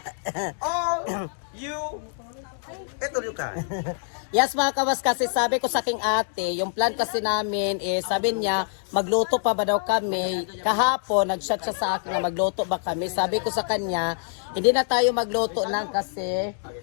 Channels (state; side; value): silent; right; digital silence